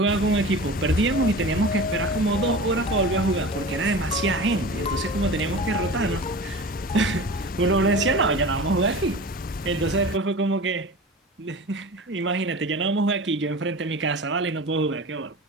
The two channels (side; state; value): both; normal; correlation 0.34